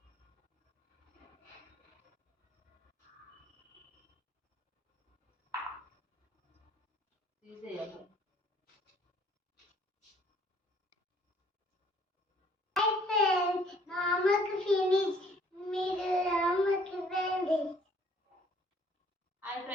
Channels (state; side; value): normal; both; correlation 0.59